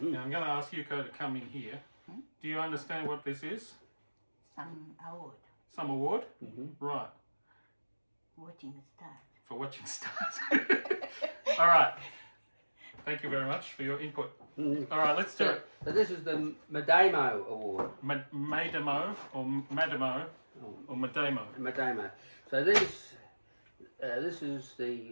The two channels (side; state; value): both; inverted; correlation -1.00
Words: I'm going to ask Yuko to come in here. Do you understand what this is? Some award. Some award? Right. Watching stars. For watching stars. All right. Thank you very much for your input. All right, let's do it. So this is the Madamo Award. Madamo or Madamo or Madamo. Madamo. So this is